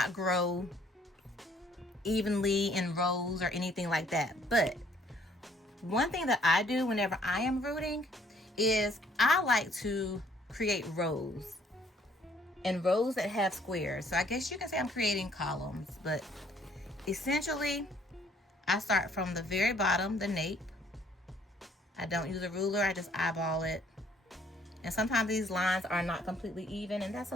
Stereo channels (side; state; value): both; normal; correlation 0.63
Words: grow evenly in rows or anything like that, but one thing that I do whenever I am rooting is I like to create rows, and rows that have squares. So I guess you can say I'm creating columns, but essentially I start from the very bottom, the nape. I don't use a ruler, I just eyeball it. And sometimes these lines are not completely even, and that's